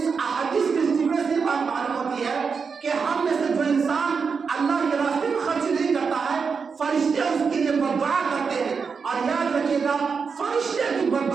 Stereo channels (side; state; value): left; quieter; 5.5 dB